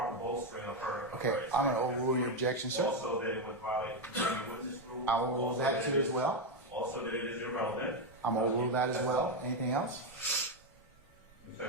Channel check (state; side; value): normal; both; correlation 0.07